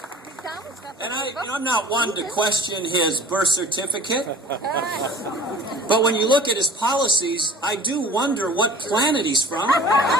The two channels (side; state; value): both; normal; correlation 0.44